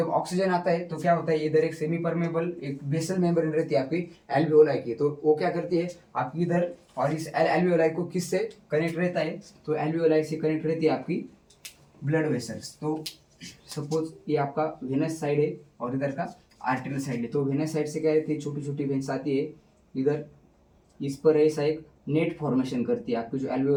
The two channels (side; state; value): both; identical; correlation 1.00